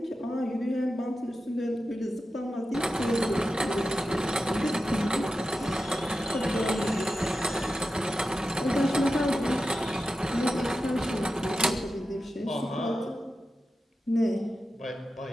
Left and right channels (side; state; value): both; normal; correlation 0.91